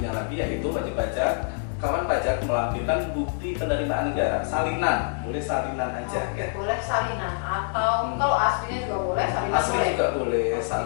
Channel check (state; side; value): silent; right; 61 dB below the other